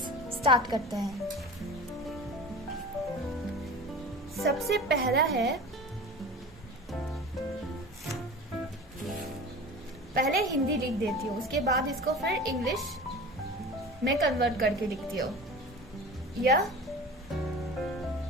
स्टार्ट करते हैं। सबसे पहला है, पहले हिंदी लिख देती हूँ, उसके बाद इसको फिर इंग्लिश में कन्वर्ट करके लिखती हूँ। यह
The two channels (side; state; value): both; normal; correlation 0.36